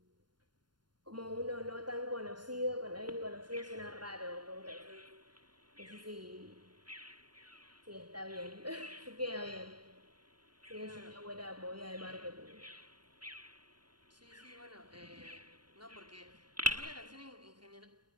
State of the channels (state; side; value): late; left; 0.71 ms